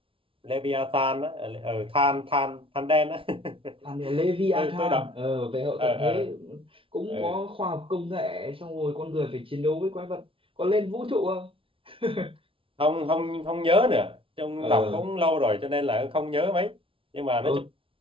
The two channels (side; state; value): left; late; 0.26 ms